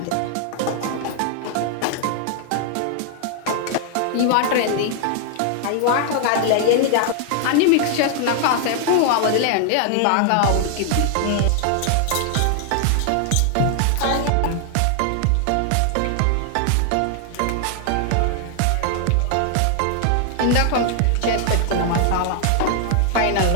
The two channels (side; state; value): both; different; correlation 0.00